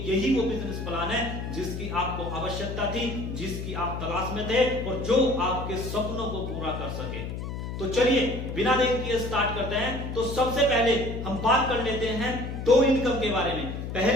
यही वो बिजनेस प्लान है जिसकी आपको आवश्यकता थी, जिसकी आप तलाश में थे और जो आपके सपनों को पूरा कर सके। तो चलिए बिना देर किए स्टार्ट करते हैं। तो सबसे पहले हम बात कर लेते हैं 2 इनकम के बारे में।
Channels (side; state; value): left; noise; hum, 6 dB below the sound